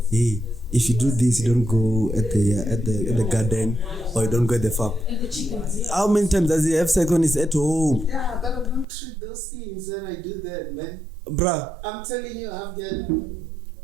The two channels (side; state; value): left; drops out; at 8.8 s